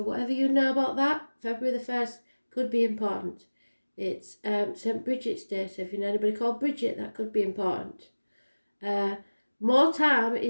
whatever you know about that, February the 1st could be important. It's St. Bridget's Day, so if you know anybody called Bridget, that could be important. More time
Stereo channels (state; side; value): inverted; both; correlation -1.00